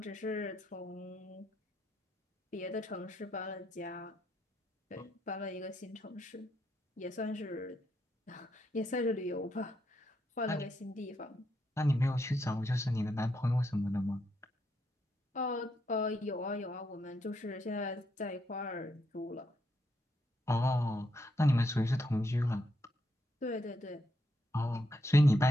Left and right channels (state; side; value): normal; both; correlation 0.79